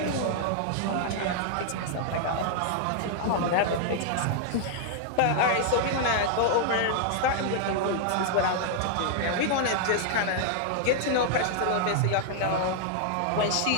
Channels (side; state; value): both; different; correlation -0.01